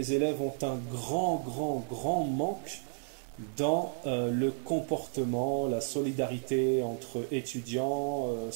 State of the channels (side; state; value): left; silent; 56 dB below the other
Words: élèves ont un grand manque dans le comportement, la solidarité entre étudiants,